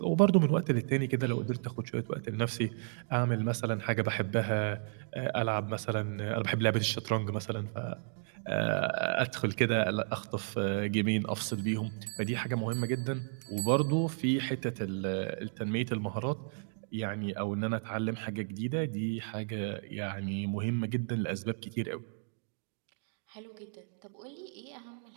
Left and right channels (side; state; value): left; silent; digital silence